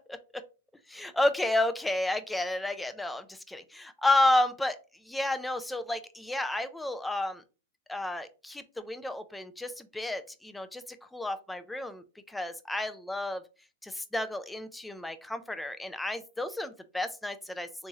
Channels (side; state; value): both; normal; correlation 0.90